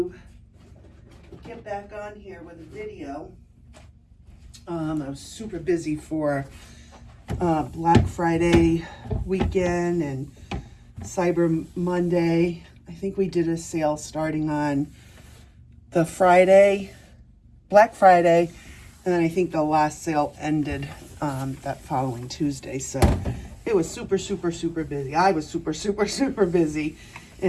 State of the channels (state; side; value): identical; both; correlation 1.00